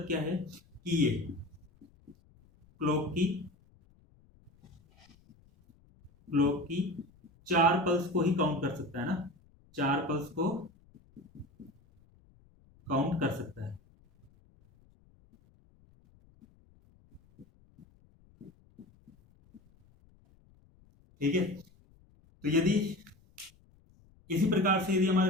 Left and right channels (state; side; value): noise; left; rumble, 29 dB below the sound